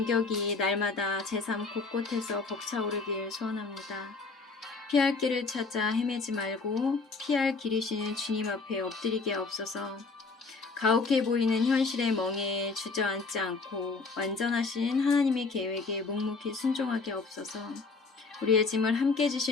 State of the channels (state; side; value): quieter; right; 4.2 dB